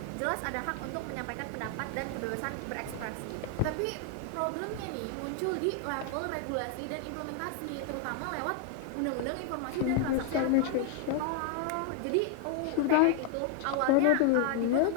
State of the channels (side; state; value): both; different; correlation 0.00